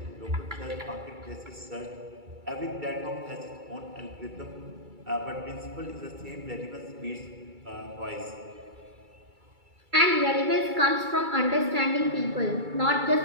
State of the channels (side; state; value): left; late; 2.3 ms